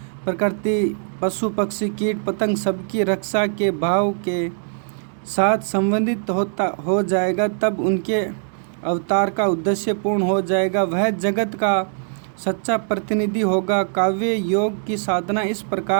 प्रकृति पशु पक्षी कीट पतंग सबकी रक्षा के भाव के साथ संबंधित हो जाएगा, तब उनके अवतार का उद्देश्य पूर्ण हो जाएगा। वह जगत का सच्चा प्रतिनिधि होगा। काव्य योग की साधना इस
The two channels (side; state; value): left; silent; 64 dB below the other